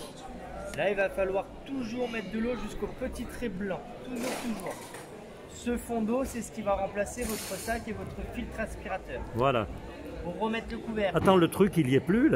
Là, il va falloir toujours mettre de l'eau jusqu'au petit trait blanc, toujours. Ce fond d'eau, c'est ce qui va remplacer votre sac et votre filtre aspirateur. Voilà. Pour remettre le couvercle. Attends, le truc, il y est plus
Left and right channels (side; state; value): both; identical; correlation 1.00